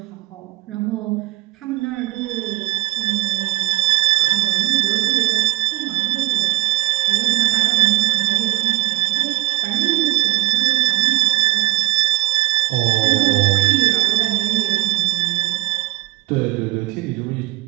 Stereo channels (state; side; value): quieter; left; 16.1 dB